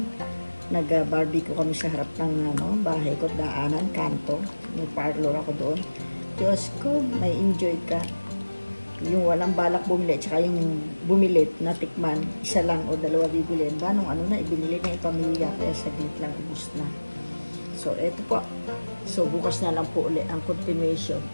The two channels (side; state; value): both; inverted; correlation -1.00